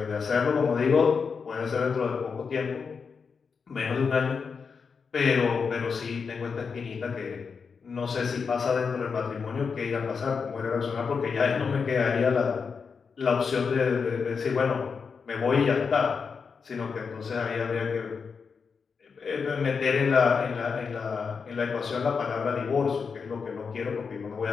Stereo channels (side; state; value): right; quieter; 5.6 dB